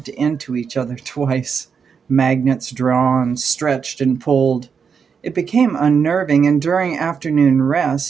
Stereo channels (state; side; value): quieter; left; 6.3 dB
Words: into each other twice. Magnets drawn, stretched, and pulled. It became unnerving, and during afternoon